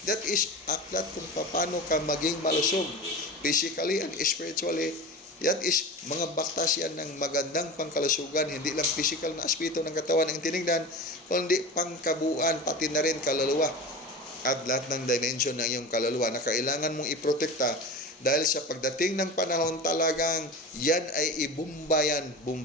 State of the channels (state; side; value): normal; both; correlation 0.30